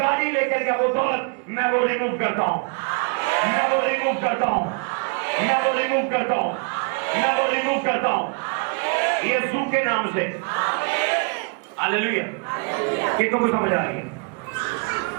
لے کر گیا، وہ دولت، میں وہ ریموو کرتا ہوں، میں وہ ریموو کرتا ہوں، میں وہ ریموو کرتا ہوں، میں وہ ریموو کرتا ہوں یسوع کے نام سے۔ ہاللیلویا۔ کتنوں کو سمجھ آ رہی ہے؟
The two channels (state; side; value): quieter; left; 38.6 dB